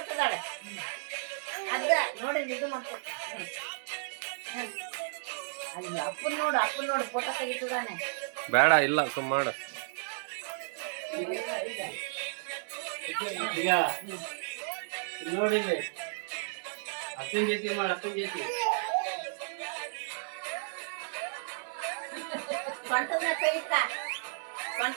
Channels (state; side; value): silent; left; digital silence